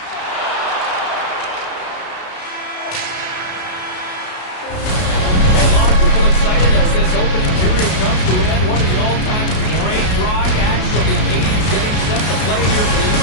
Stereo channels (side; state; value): right; late; 33 ms